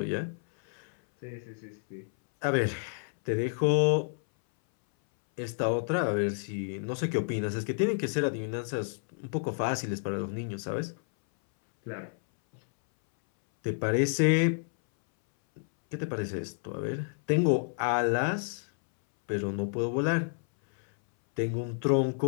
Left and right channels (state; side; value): silent; right; 58 dB below the other